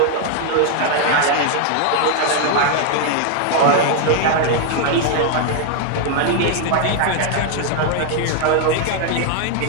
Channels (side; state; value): both; different; correlation 0.00